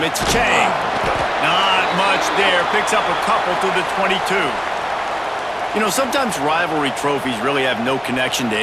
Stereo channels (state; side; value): identical; both; correlation 1.00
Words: it's Chang. Not much there, picks up a couple to the 22. You know, sometimes rivalry trophies really have no connection to